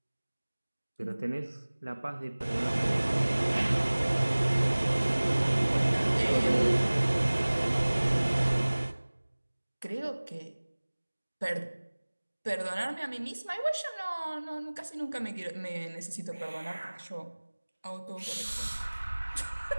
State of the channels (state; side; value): inverted; both; correlation -1.00